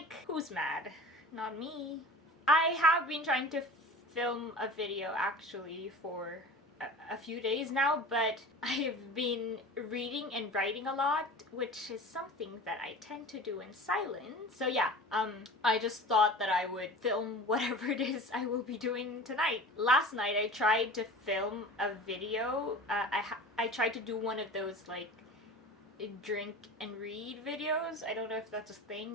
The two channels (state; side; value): normal; both; correlation 0.37